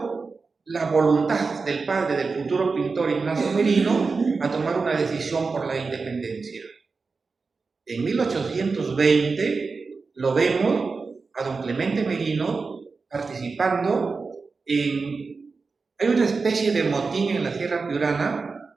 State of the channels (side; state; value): left; quieter; 4.4 dB